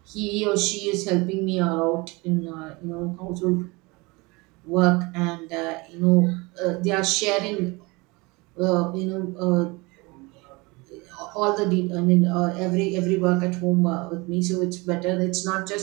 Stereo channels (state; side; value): quieter; left; 25.4 dB